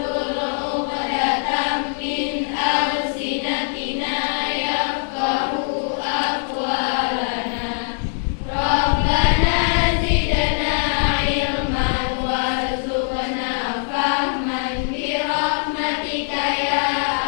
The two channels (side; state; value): right; silent; 65 dB below the other